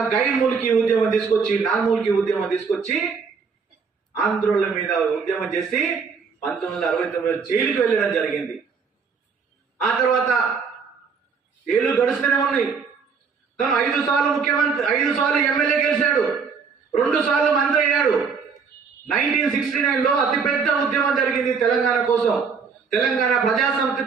గైర్మూలికి ఉద్యమం తీసుకొచ్చి నార్మూలికి ఉద్యమం తీసుకొచ్చి ఆంధ్రోళ్ళ మీద ఉద్యమం చేసి 1969 జైలుకి వెళ్ళడం జరిగింది. ఆ తర్వాత ఏళ్ళు గడుస్తూనే ఉన్నాయి. తను 5 సార్లు ముఖ్యమంత్రి, 5 సార్లు ఎమ్మెల్యే గెలిచాడు, 2 సార్లు మంత్రి అయ్యాడు. 1969లో అతిపెద్ద ఉద్యమం జరిగింది తెలంగాణ కోసం. తెలంగాణ ప్రజాసమితి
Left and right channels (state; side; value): quieter; left; 5.6 dB